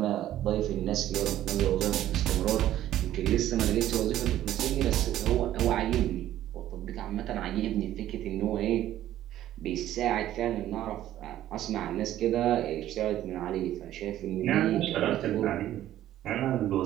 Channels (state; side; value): quieter; left; 12.9 dB